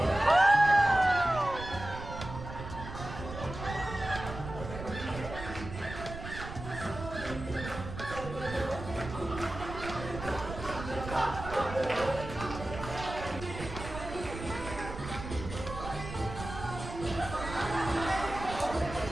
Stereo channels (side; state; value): right; noise; rumble, 9 dB below the sound